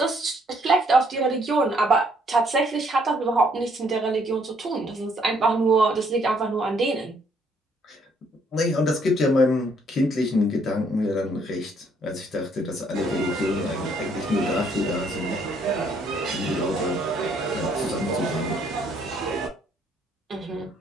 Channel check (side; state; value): both; normal; correlation 0.67